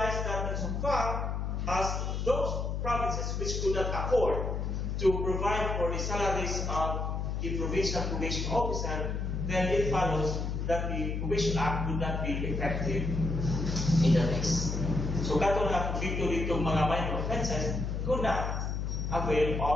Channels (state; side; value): noise; left; hum, 2 dB below the sound